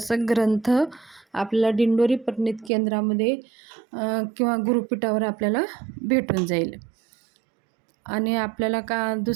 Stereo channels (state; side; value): drops out; left; at 2.7 s